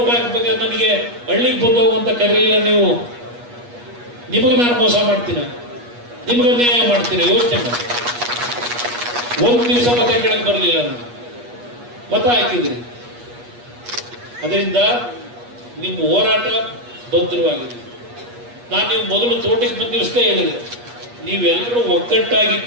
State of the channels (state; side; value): late; left; 8.3 ms